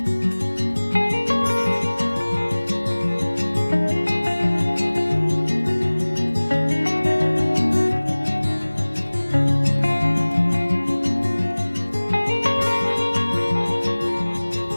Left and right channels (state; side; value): inverted; both; correlation -1.00